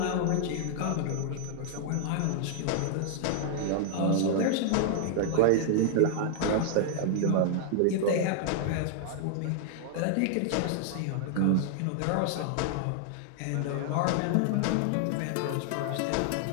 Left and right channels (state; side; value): different; both; correlation 0.00